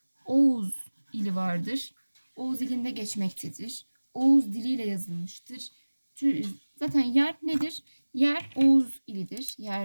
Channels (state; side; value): inverted; both; correlation -1.00